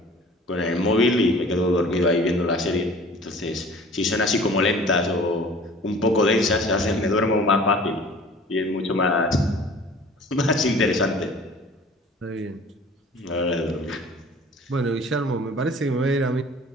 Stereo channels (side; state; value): both; normal; correlation 0.46